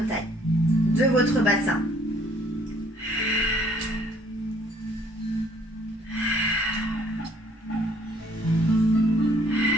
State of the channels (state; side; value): normal; both; correlation 0.61